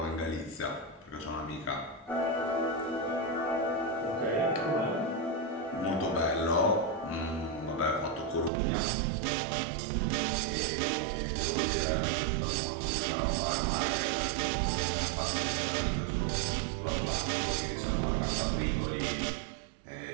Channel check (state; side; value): drops out; left; at 8.5 s